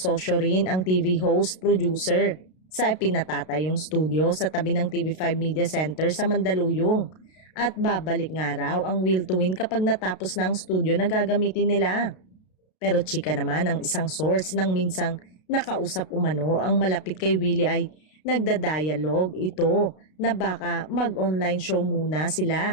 rin ang TV host producer sa pinatatayong studio sa tabi ng TV5 Media Center sa Mandaluyong. At babalik nga raw ang Will to Win kapag natapos na ang studio na gagamitin nila. Pero chika naman ang isang source nang minsang nakausap umano ang malapit kay Willie ay nagda-dialogue ito na baka mag-online show muna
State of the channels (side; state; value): right; late; 32 ms